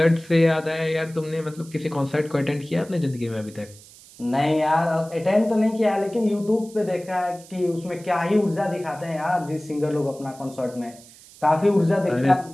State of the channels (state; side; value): noise; right; hiss, 22 dB below the sound